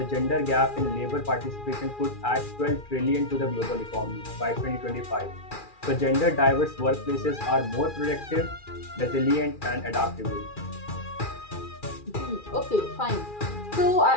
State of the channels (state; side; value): late; right; 2.4 ms